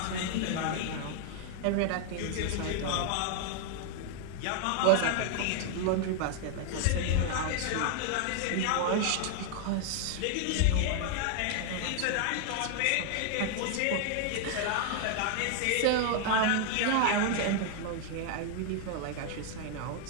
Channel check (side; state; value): both; different; correlation 0.00